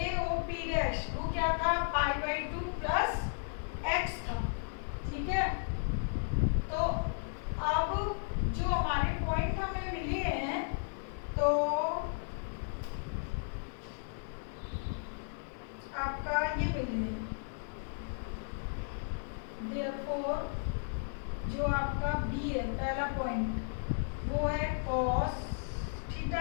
वो क्या था π/2 प्लस x था, ठीक है। तो अब जो हमारे पॉइंट हमें मिले हैं तो आपका ये मिले हैं, therefore जो आपका B है पहला पॉइंट वो है cos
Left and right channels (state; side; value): silent; right; 55 dB below the other